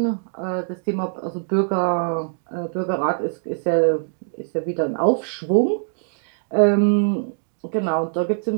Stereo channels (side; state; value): left; silent; digital silence